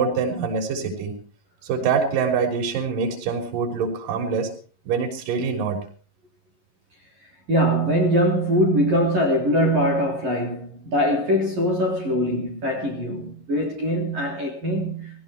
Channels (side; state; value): left; late; 11 ms